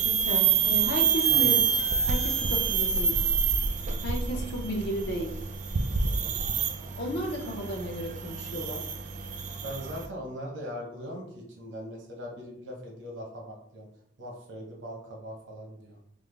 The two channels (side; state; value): left; quieter; 5.1 dB